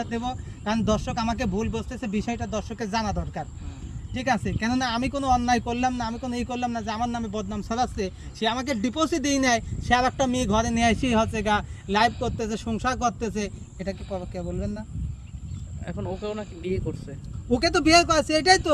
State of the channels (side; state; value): both; identical; correlation 1.00